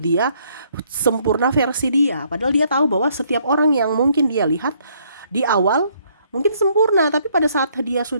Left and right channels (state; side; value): inverted; both; correlation -0.67